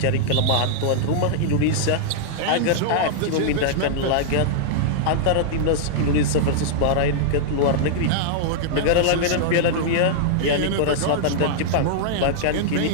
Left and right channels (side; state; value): both; different; correlation -0.01